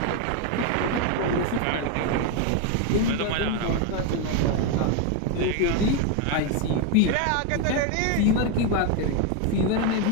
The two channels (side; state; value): both; different; correlation 0.02